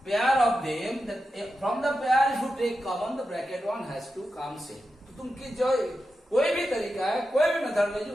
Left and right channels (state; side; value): normal; both; correlation 0.90